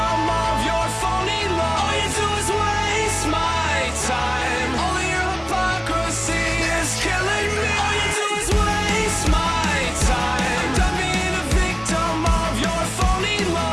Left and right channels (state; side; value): identical; both; correlation 1.00